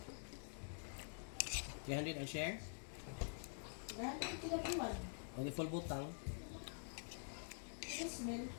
300 ang share? Dahil ang kinabuhan. O di full butang? Smell.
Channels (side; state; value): right; silent; digital silence